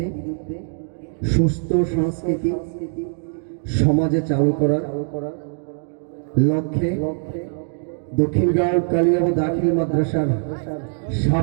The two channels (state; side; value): silent; left; digital silence